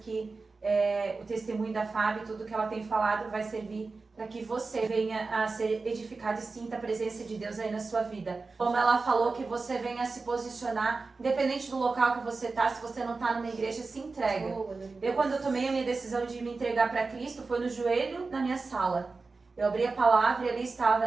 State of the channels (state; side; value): quieter; left; 4.0 dB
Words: o testemunho da Fábio, tudo que ela tem falado vai servir para que você venha a ser edificado e sinta a presença de Deus aí na sua vida. Como ela falou, que você venha a se posicionar, independente do local que você está, se você não está numa igreja, se entrega. Quando eu tomei a minha decisão de me entregar para Cristo, foi no joelho na minha sala. Eu abri a palavra e ali